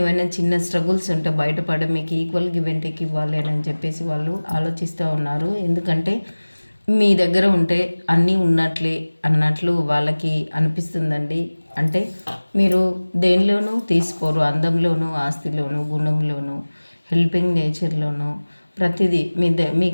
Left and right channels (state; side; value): inverted; both; correlation -1.00